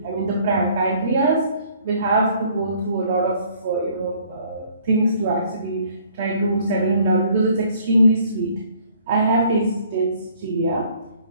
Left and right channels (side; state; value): both; inverted; correlation -0.59